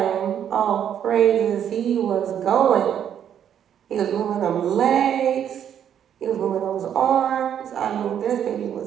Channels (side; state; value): left; quieter; 9.3 dB